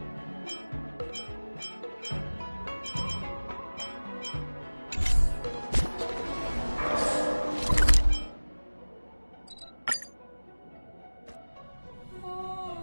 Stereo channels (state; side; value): inverted; both; correlation -1.00